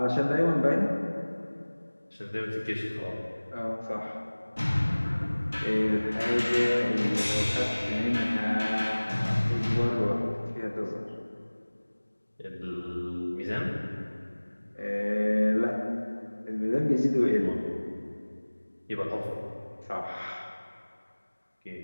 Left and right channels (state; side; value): inverted; both; correlation -1.00